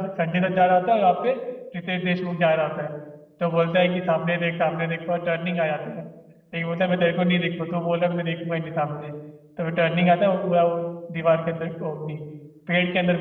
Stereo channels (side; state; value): both; identical; correlation 1.00